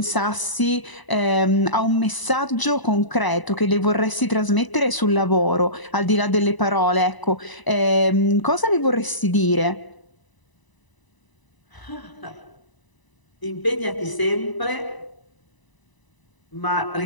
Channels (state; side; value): late; right; 1.0 ms